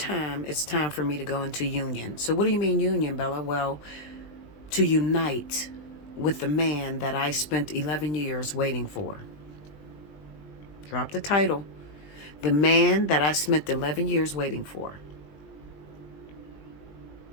it's time for me to go into union. So what do you mean union, Bella? Well, to unite with the man that I spent 11 years waiting for. Drop the title. The man that I spent 11 years waiting for.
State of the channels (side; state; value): right; late; 20 ms